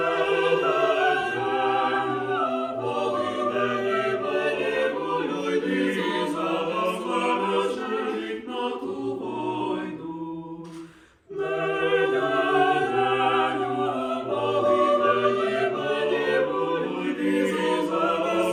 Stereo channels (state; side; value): identical; both; correlation 1.00